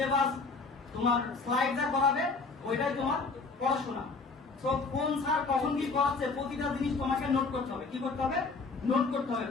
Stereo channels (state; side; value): quieter; right; 4.2 dB